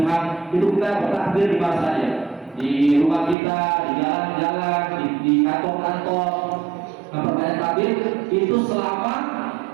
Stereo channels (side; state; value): left; drops out; at 3.4 s